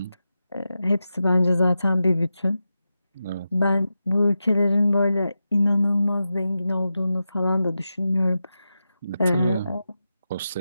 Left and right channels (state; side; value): inverted; both; correlation -0.91